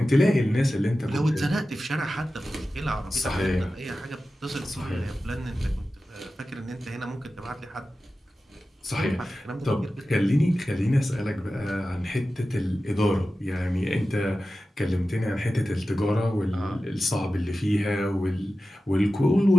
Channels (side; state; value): both; normal; correlation 0.94